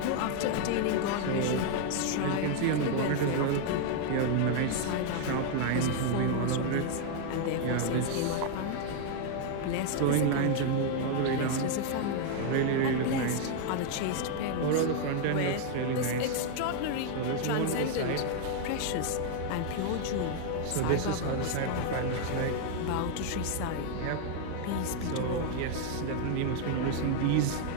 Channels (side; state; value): both; different; correlation 0.00